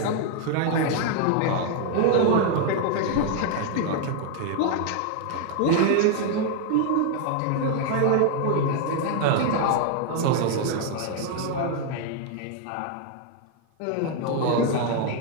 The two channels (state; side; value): different; both; correlation 0.00